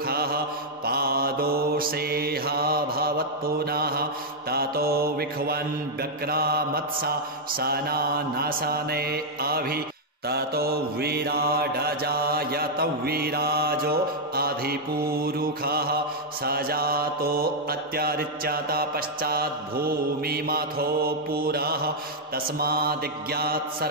पादोषेह भवत्पुनः ततो विख्वन् व्यक्रामत्सा सनानसने अभि ततो विराडजायत विराजो अधिपुरुषः सजातो अत्यरिच्यत पश्चाद्भूमिमथो पुरः तस्मादिज्ञात्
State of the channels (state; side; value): normal; both; correlation -0.03